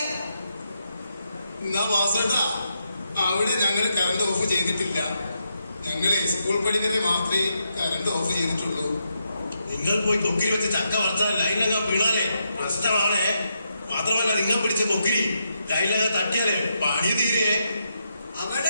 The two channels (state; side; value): inverted; both; correlation -0.82